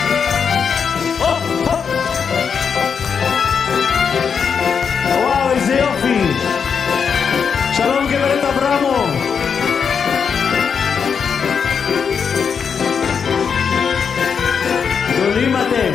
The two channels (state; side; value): quieter; right; 6.5 dB